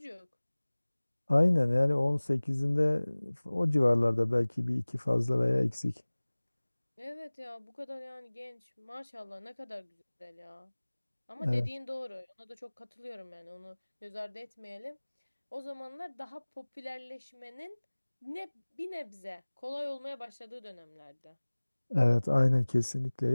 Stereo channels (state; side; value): inverted; both; correlation -1.00